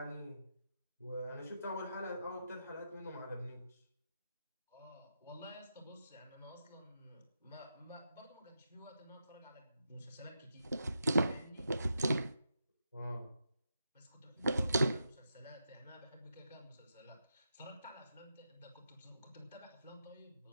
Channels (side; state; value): both; inverted; correlation -0.85